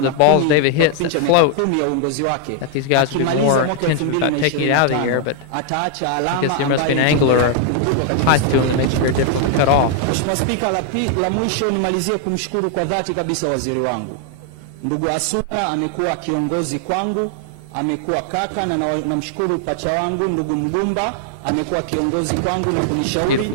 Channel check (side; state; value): both; different; correlation 0.00